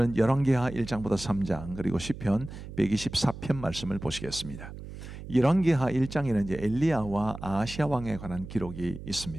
열왕기하 1장부터 3장 그리고 시편 124편 말씀을 보시겠습니다. 열왕기하 1장에는 이제 엘리야와 아하시아 왕에 관한 기록이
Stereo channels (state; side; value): noise; right; hum, 12 dB below the sound